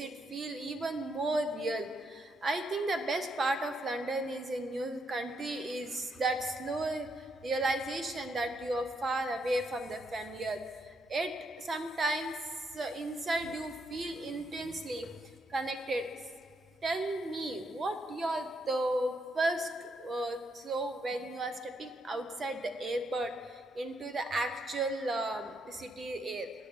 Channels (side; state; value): both; normal; correlation 0.77